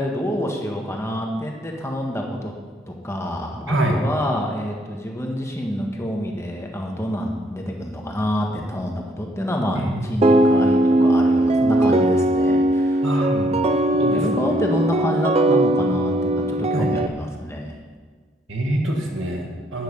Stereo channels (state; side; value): normal; both; correlation 0.69